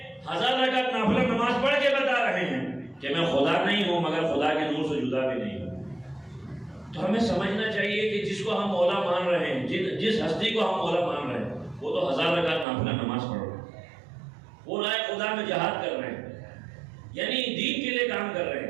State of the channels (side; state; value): left; drops out; at 12.7 s